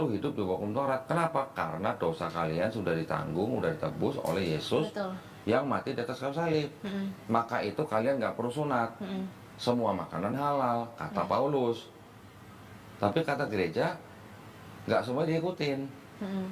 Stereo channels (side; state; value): both; identical; correlation 1.00